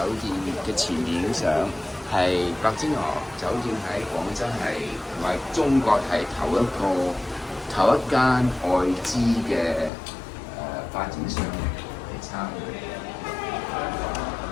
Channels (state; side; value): drops out; right; at 9.9 s